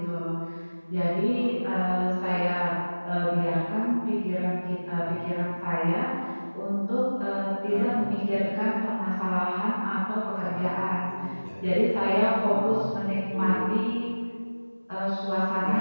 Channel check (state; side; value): inverted; both; correlation -1.00